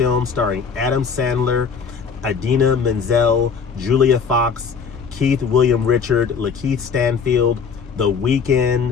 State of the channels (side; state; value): right; quieter; 6.0 dB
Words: starring Adam Sandler, Idina Menzel, Julia Fox, Willam Richards, Lakeith Stanfield, The